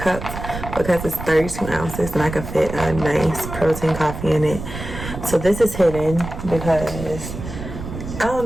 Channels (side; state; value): right; noise; rumble, 9 dB below the sound